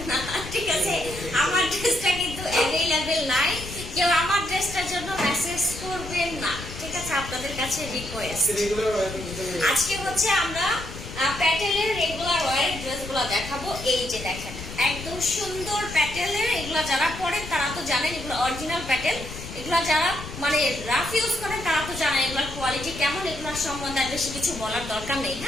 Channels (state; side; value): noise; left; rumble, 11 dB below the sound